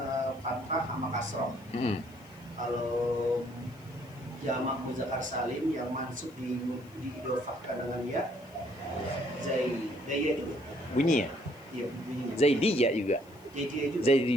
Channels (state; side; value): noise; left; hiss, 28 dB below the sound